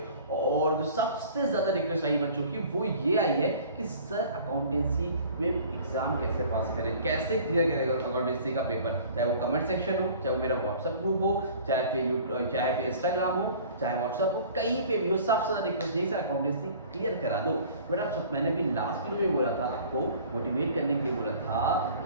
और जो सबसे ज़्यादा रिक्वेस्ट आई बच्चों की वो ये आई है कि सर अकाउंटेंसी में एग्ज़ाम कैसे पास करें, कैसे क्लियर करेगा अकाउंटेंसी का पेपर। चाहे वो कमेंट सेक्शन हो, चाहे वो मेरा व्हाट्सअप ग्रुप हो, चाहे फिर इंस्टाग्राम हो, चाहे व्हाट्सअप हो, कहीं पे भी हो, सबसे ज़्यादा रिक्वेस्ट यही सर अकाउंटेंसी क्लियर करा दो। बट आप सब, मैंने भी लास्ट वीडियो में बोला था, आपको मोटिवेट करने के लिए बोला था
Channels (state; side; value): inverted; both; correlation -0.47